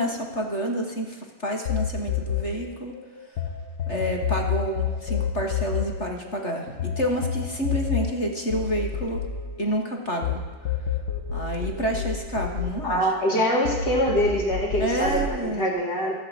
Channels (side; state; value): right; late; 3.3 ms